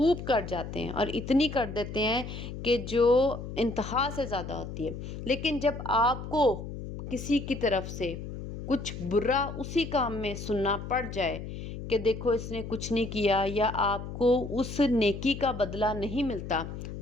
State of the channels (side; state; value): left; noise; hum, 8 dB below the sound